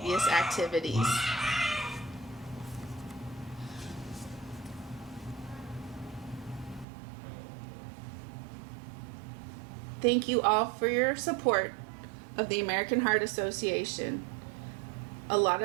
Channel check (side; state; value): left; drops out; at 6.9 s